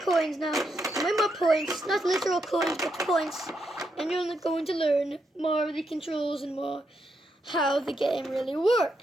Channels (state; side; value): normal; both; correlation 0.81